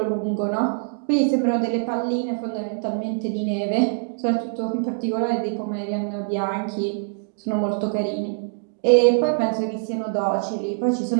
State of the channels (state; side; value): silent; left; digital silence